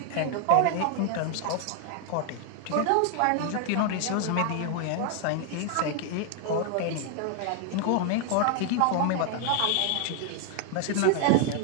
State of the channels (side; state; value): both; different; correlation 0.00